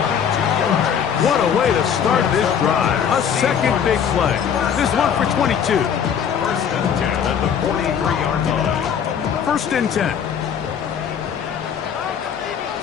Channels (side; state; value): right; quieter; 7.9 dB